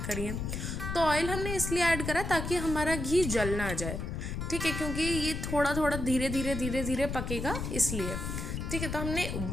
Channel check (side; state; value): left; noise; rumble, 4 dB below the sound